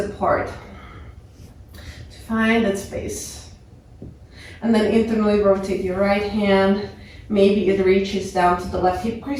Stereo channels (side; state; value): both; identical; correlation 1.00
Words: to find that space. And then internally rotate your right hand. Maybe it reaches down to the left hip